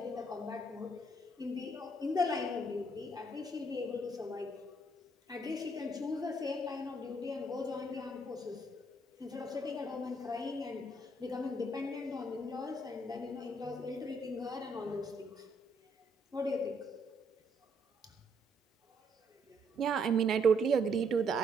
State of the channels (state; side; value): normal; both; correlation 0.70